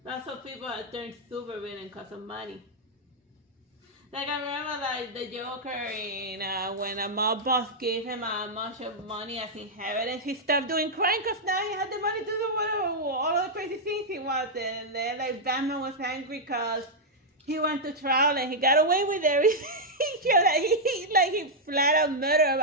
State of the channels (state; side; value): normal; both; correlation -0.04